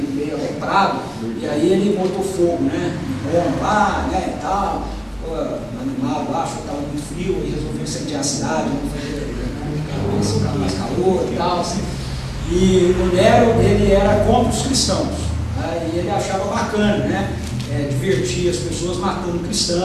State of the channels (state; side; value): identical; both; correlation 1.00